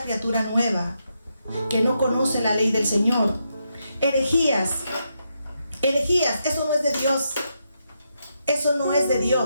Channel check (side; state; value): both; inverted; correlation -0.82